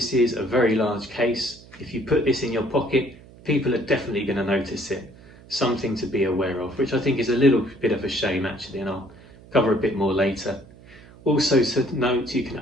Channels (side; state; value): right; noise; hum, 22 dB below the sound